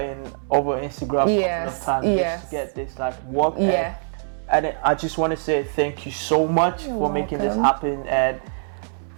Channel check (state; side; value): silent; left; 63 dB below the other